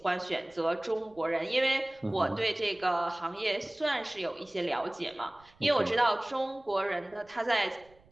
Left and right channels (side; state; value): right; noise; rumble, 29 dB below the sound